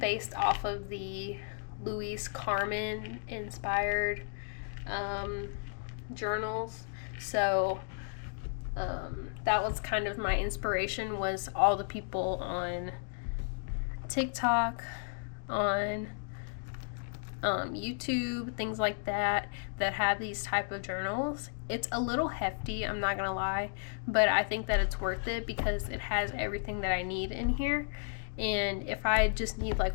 off of the Louise Carmen inspired journals. So that was kind of my inspiration, was all the people on TikTok, on YouTube, things like that have these type of journals. It's a little hefty, I'm not gonna lie, but I think that it's worth it because it has everything that I need in here. And if I just need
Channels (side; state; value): right; silent; digital silence